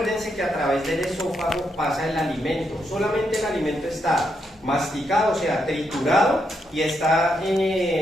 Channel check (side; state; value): both; normal; correlation 0.80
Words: que a través del esófago pasa el alimento. Solamente el alimento está masticado, o sea, triturado, y está